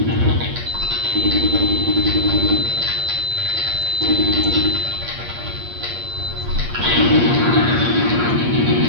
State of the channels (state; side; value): late; left; 8.5 ms